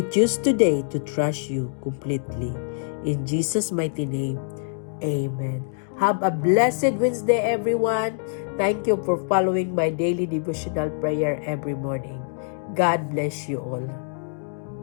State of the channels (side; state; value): right; silent; digital silence